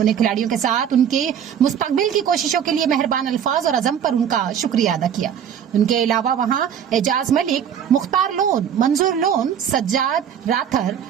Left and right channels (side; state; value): left; quieter; 8.6 dB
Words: खिलाड़ियों के साथ उनके मुस्तकबिल की कोशिशों के लिए मेहरबान अल्फाज और अज़म पर उनका शुक्रिया अदा किया। उनके अलावा वहां एजाज मलिक, मुख्तार लोन, मंजूर लोन, सज्जाद राथर,